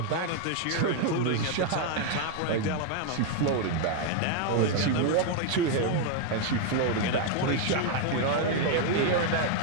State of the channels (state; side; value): different; both; correlation 0.00